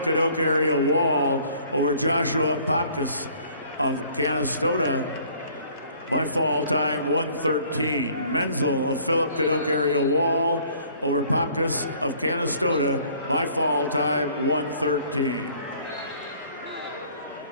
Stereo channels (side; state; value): both; inverted; correlation -0.56